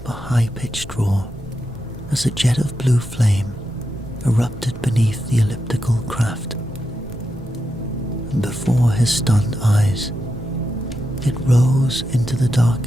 a high-pitched roar as a jet of blue flame erupted beneath the elliptical craft, and before his stunned eyes, it rose into the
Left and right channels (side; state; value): both; normal; correlation 0.86